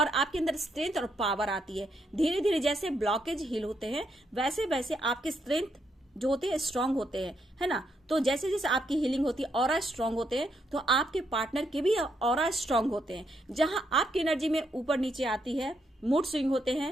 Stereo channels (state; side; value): normal; both; correlation 0.77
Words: आपके अंदर स्ट्रेंथ और पावर आती है। धीरे धीरे जैसे ब्लॉकेज हील होते हैं वैसे वैसे आपके स्ट्रेंथ जो होते हैं स्ट्रांग होते हैं, है ना। तो जैसे जैसे आपकी हीलिंग होती है, ऑरा स्ट्रांग होते हैं, तो आपके पार्टनर के भी ऑरा स्ट्रांग होते हैं। जहां आपकी एनर्जी में ऊपर नीचे आती है, मूड स्विंग होते